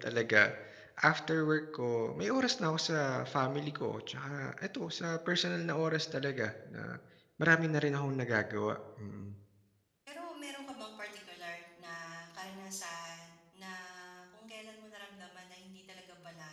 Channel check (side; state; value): both; identical; correlation 1.00